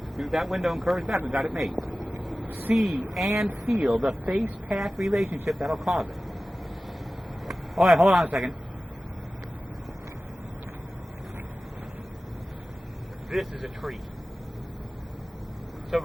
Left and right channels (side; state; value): both; normal; correlation 0.96